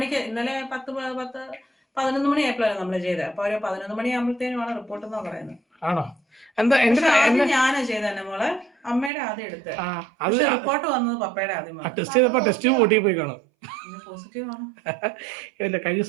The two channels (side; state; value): left; drops out; at 9.1 s